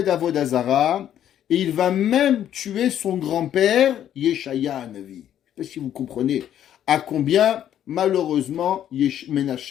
Avodah Zara, et il va même tuer son grand-père, Yeshaya Navi. Je ne sais pas si vous comprenez à combien, malheureusement,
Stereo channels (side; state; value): right; quieter; 10.6 dB